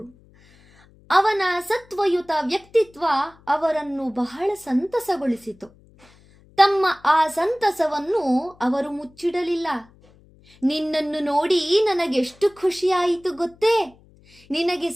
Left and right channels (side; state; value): left; noise; hum, 28 dB below the sound